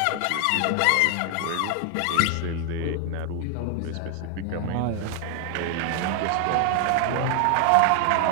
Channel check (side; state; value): both; different; correlation 0.00